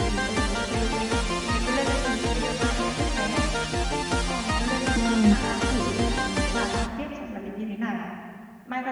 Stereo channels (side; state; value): both; identical; correlation 1.00